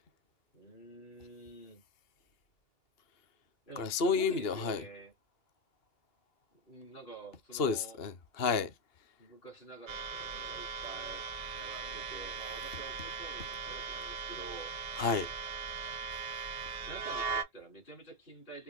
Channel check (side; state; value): right; late; 2.7 ms